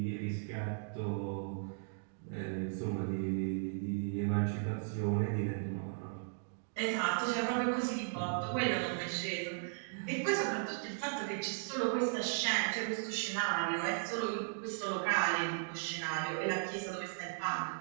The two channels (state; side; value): silent; left; digital silence